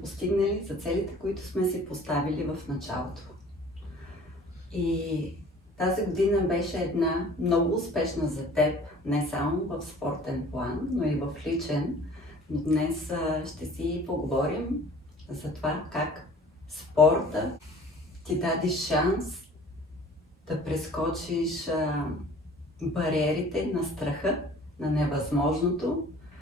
за целите, които сме си поставили в началото. И тази година беше една много успешна за теб, не само в спортен план, но и в личен. Но днес ще си поговорим за това как спорта ти даде шанс да прескочиш бариерите на страха, на невъзможното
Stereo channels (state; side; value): normal; both; correlation 0.49